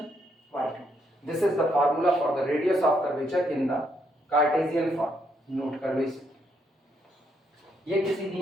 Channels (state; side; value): normal; both; correlation 0.74